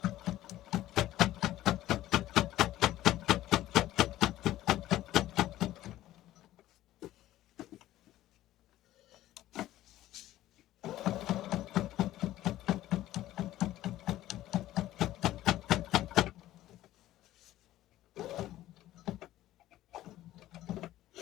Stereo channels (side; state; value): right; quieter; 14.5 dB